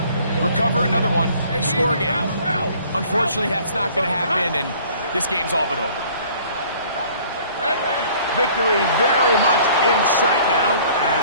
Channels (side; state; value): both; inverted; correlation -0.53